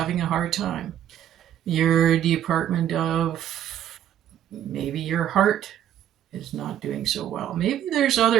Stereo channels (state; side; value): quieter; left; 10.8 dB